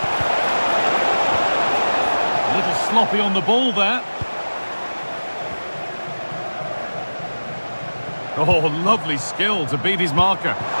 A little sloppy on the ball there. Oh, lovely skill to beat his marker.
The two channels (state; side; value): inverted; both; correlation -1.00